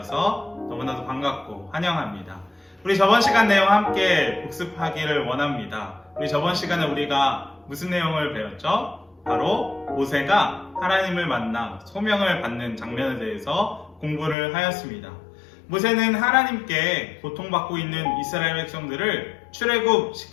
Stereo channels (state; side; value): drops out; right; at 14.4 s